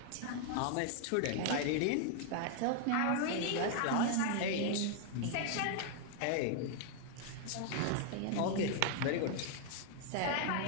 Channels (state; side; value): different; both; correlation 0.00